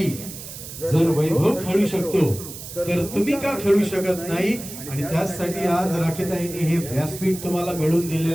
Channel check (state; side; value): noise; right; hiss, 12 dB below the sound